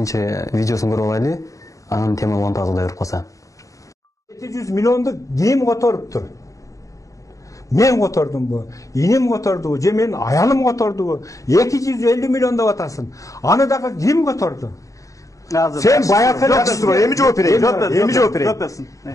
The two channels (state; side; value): late; right; 0.16 ms